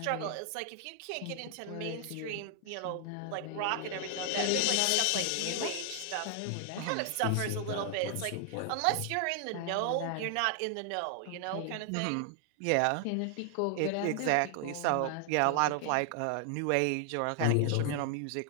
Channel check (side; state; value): both; different; correlation 0.00